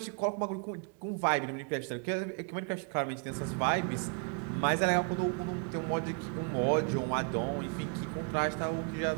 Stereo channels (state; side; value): quieter; left; 39.0 dB